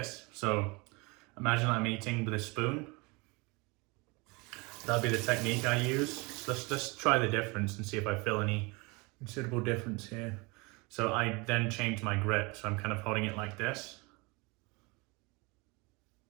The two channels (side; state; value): left; quieter; 27.0 dB